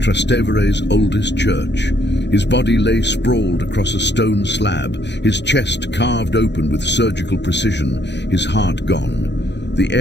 oldest church. His body lay sprawled across a stone slab, his chest carved open with surgical precision, his heart gone. The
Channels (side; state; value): right; late; 0.51 ms